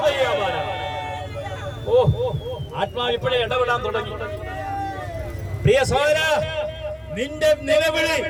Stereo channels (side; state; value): both; identical; correlation 1.00